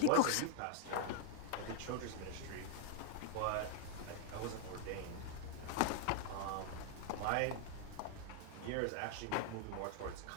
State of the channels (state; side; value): different; both; correlation 0.00